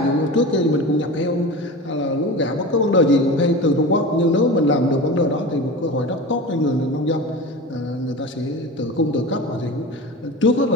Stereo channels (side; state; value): both; normal; correlation 0.31